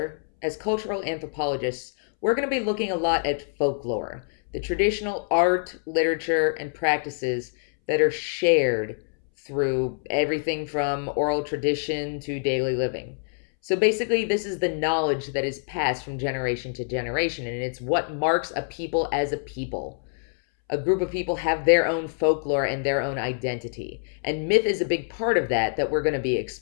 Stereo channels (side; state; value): right; silent; 61 dB below the other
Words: as cultural anthropologists, we're going to be looking a lot at folklore, the traditional art, literature, and practices that are shared through everything from oral tradition to daily living. So basically, this is the knowledge that is passed from generation to generation, and it's what marks a people as a people. A group of people have their own folklore and their own identity, and myth is a big part of that we're going to be